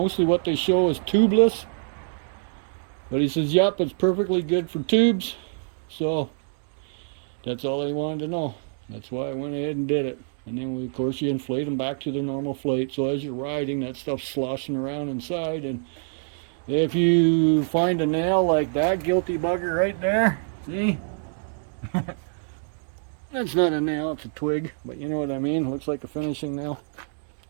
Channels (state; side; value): silent; left; digital silence